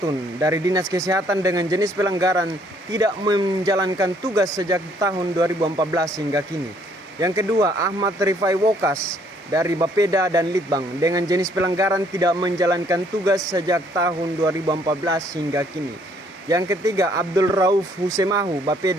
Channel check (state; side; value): normal; both; correlation 0.65